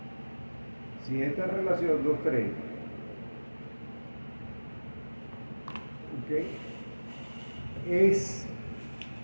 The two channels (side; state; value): both; inverted; correlation -1.00